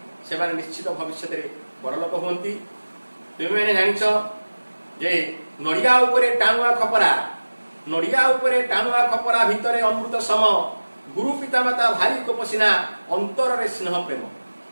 ସେମାନେ ନିଶ୍ଚିତ ଭବିଷ୍ୟତରେ ବଡ଼ଲୋକ ହୁଅନ୍ତି। ତୁମେମାନେ ଜାଣିଛ ଯେ ନଡ଼ିଆ ଉପରେ ଟାଣୁଆ ଖପରା, ନଡ଼ିଆ ଉପରେ ଟାଣୁଆ ଖପରା ଭିତରେ ଅମୃତ ସମ, ଗୁରୁ ପିତାମାତା ଭାରି କୋପସିନା ଅନ୍ତରରେ ସ୍ନେହ ପ୍ରେମ।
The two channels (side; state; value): both; inverted; correlation -1.00